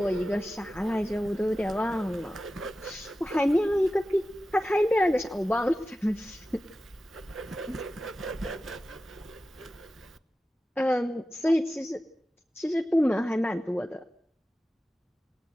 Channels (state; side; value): normal; both; correlation 0.94